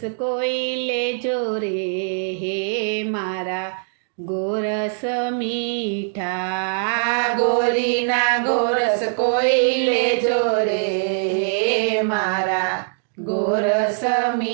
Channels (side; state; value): left; silent; digital silence